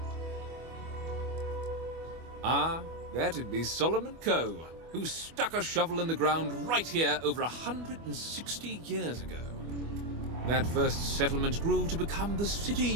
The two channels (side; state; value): left; late; 25 ms